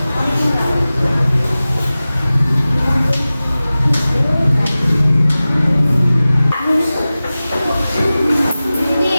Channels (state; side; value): inverted; both; correlation -0.97